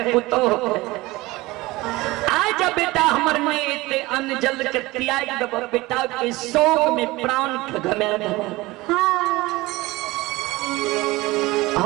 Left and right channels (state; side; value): quieter; left; 20.3 dB